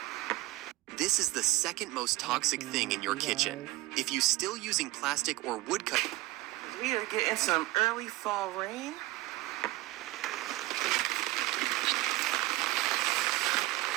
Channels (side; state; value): left; quieter; 18.4 dB